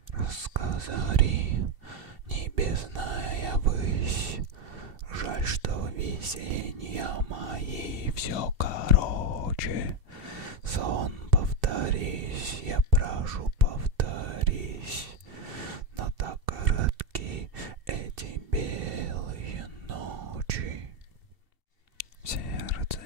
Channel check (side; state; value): left; late; 2.7 ms